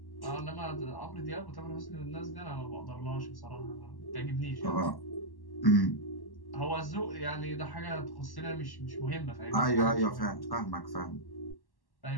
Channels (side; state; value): right; late; 1.1 ms